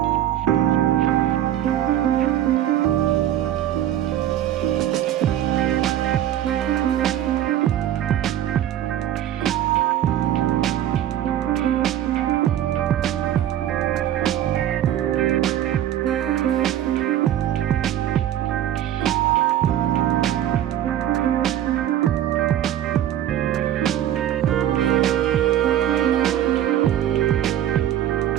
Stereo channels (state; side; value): quieter; left; 11.6 dB